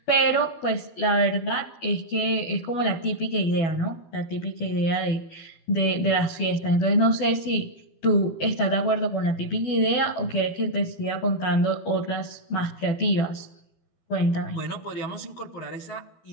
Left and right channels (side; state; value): right; late; 12 ms